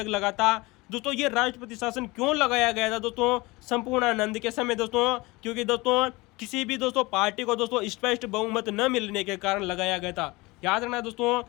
लगा था दोस्तों। ये राष्ट्रपति शासन क्यों लगाया गया था दोस्तों संपूर्णानंद के समय दोस्तों? क्योंकि दोस्तों किसी भी दोस्तों पार्टी को दोस्तों स्पष्ट बहुमत न मिलने के कारण लगाया गया था। याद रखना दोस्तों,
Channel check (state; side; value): quieter; right; 22.9 dB